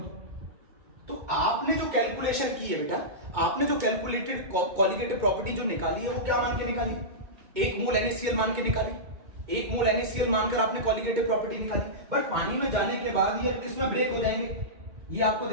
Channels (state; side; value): late; left; 2.2 ms